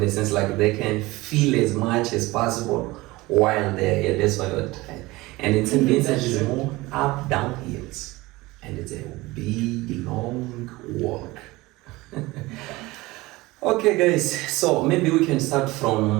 sense like they can feel as much as possible while they're here. That's why we're tired. And in Saint Vincent is more up, down hills. And it's a big, long walk. Okay, guys. So maybe we can start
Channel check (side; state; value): left; quieter; 20.7 dB